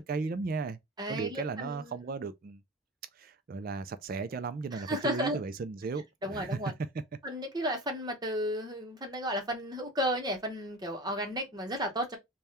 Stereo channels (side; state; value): both; normal; correlation 0.33